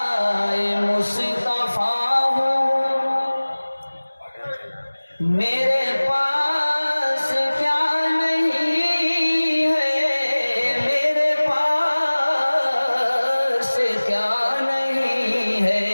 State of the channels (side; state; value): both; inverted; correlation -1.00